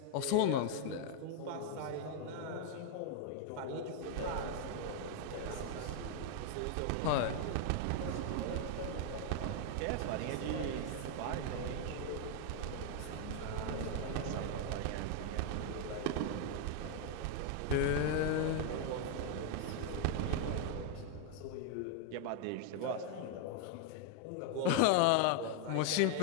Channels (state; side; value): different; both; correlation 0.00